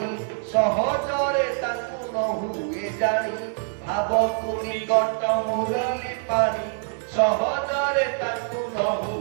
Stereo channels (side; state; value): left; silent; 56 dB below the other